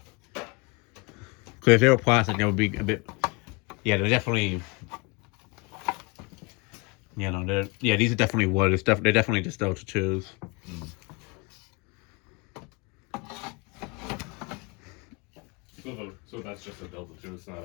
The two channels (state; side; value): quieter; right; 28.7 dB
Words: Because if they were plastic, they would be a bit. Yeah, they're definitely. You know, these are definitely wood. They're definitely just Delta 2s. So that's just a Delta 2. It's not